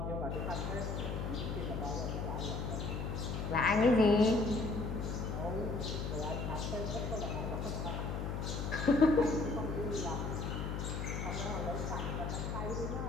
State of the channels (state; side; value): noise; left; hum, 3 dB below the sound